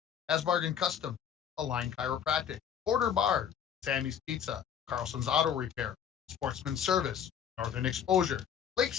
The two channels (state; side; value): quieter; right; 8.6 dB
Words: Asbargan Custom, Align Chiropractic, Border Bar, Sammy's Pizza, Carlson's Auto Repair, Sportsman Service, Northern Exposure,